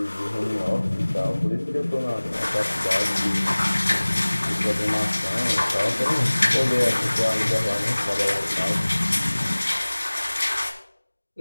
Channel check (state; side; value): inverted; both; correlation -1.00